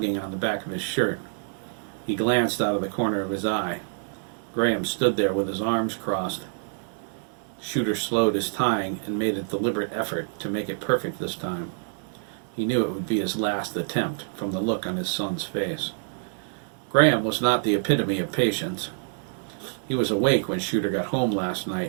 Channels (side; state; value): left; silent; digital silence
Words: on the back of his shirt. He glanced out of the corner of his eye. Graham stood there with his arms crossed. Shooter slowed his tying and made a deliberate effort to make it perfect this time. He knew it would be his last attempt from the look on his son's face. Graham was not the epitome of patience. He was awake when Shooter got home last